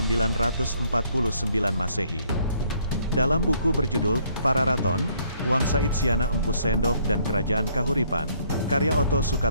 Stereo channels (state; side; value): inverted; both; correlation -0.66